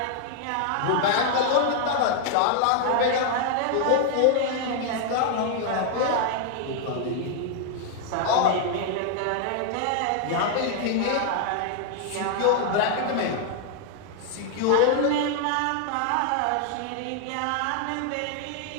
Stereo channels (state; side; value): different; both; correlation 0.00